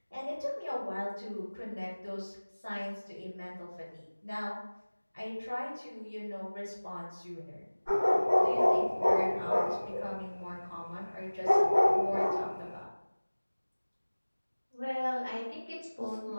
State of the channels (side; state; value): both; inverted; correlation -1.00